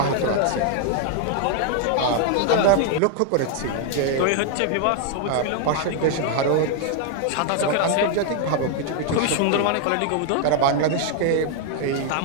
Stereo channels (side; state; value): both; different; correlation 0.00